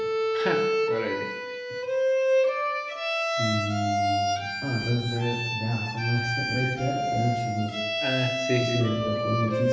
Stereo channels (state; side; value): identical; both; correlation 1.00